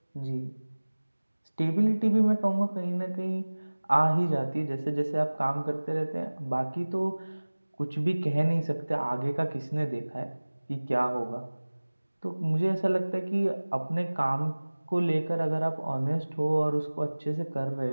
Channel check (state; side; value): inverted; both; correlation -1.00